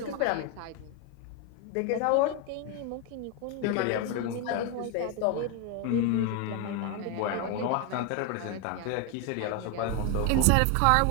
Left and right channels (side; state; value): both; different; correlation 0.01